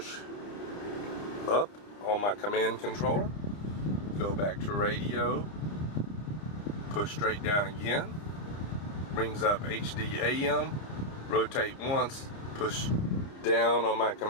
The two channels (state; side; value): late; right; 29 ms